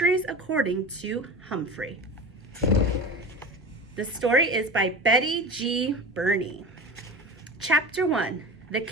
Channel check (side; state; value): both; normal; correlation 0.31